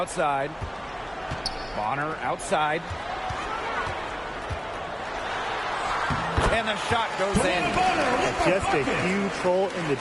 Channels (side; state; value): both; identical; correlation 1.00